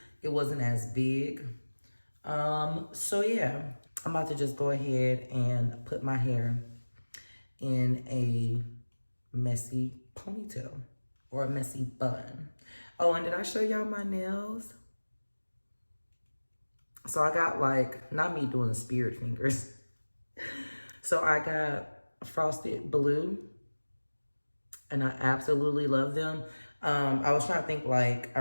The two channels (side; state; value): both; inverted; correlation -1.00